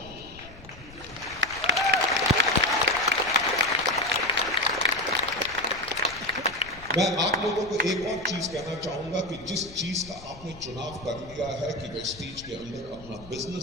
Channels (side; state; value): left; noise; rumble, 19 dB below the sound